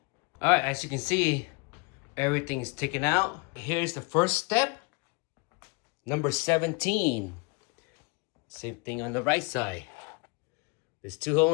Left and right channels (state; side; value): quieter; right; 28.8 dB